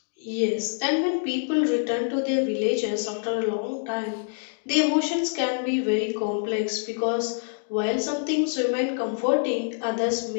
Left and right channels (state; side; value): silent; right; digital silence